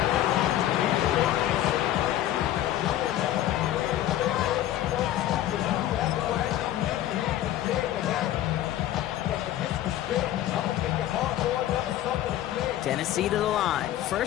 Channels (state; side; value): quieter; right; 13.0 dB